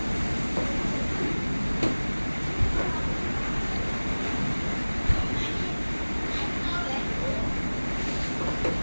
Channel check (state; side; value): inverted; both; correlation -1.00